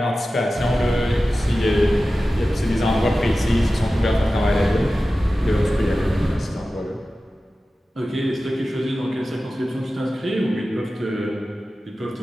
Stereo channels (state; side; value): normal; both; correlation 0.95